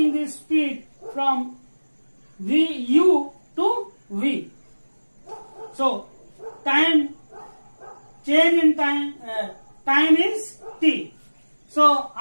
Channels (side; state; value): both; inverted; correlation -1.00